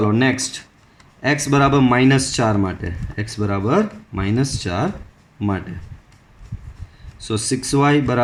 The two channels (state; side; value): identical; both; correlation 1.00